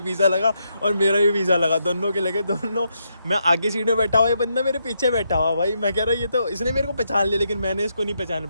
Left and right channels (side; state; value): both; inverted; correlation -0.80